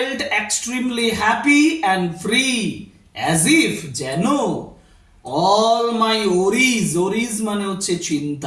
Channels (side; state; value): both; identical; correlation 1.00